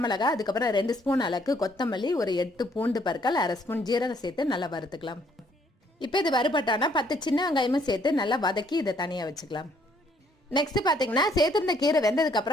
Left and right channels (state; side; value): normal; both; correlation 0.66